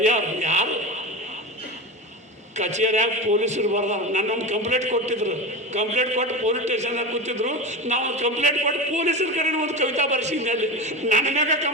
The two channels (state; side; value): normal; both; correlation 0.24